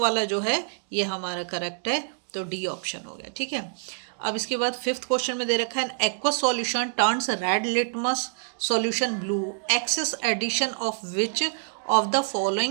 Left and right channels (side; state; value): left; silent; digital silence